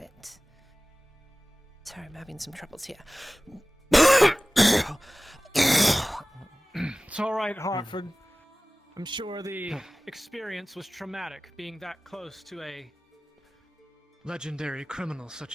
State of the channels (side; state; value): both; normal; correlation 0.98